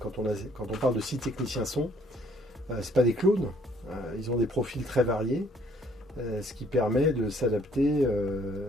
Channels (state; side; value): normal; both; correlation 0.62